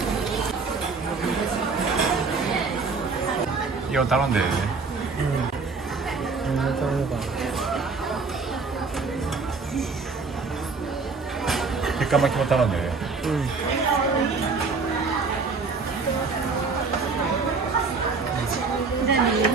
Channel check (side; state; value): left; quieter; 4.5 dB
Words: 이거 다른데. 백가마키만 다른데.